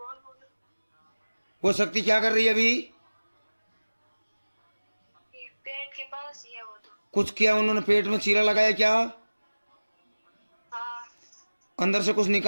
बोल। वो शक्ति क्या कर रही है अभी? ये पेट के पास ही है वो तो। कुछ किया उन्होंने, पेट में चीरा लगाया क्या? हाँ। अंदर से कुछ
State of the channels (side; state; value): both; inverted; correlation -1.00